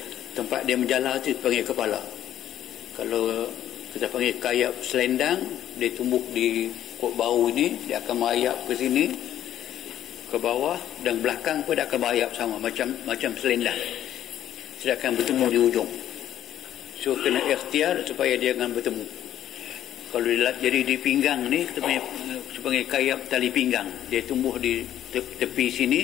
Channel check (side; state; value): right; quieter; 11.5 dB